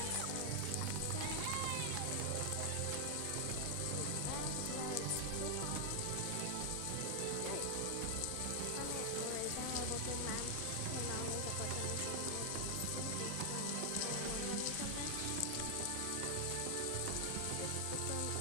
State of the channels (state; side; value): different; both; correlation 0.00